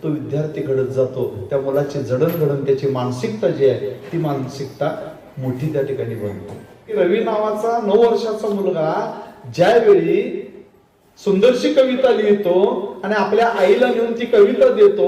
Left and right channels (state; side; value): identical; both; correlation 1.00